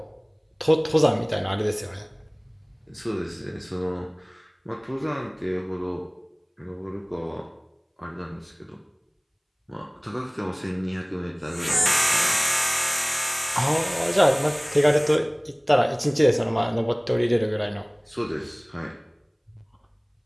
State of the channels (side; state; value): both; identical; correlation 1.00